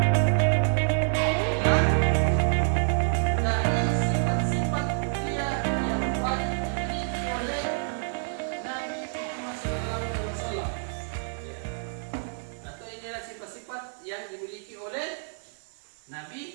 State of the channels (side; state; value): left; silent; digital silence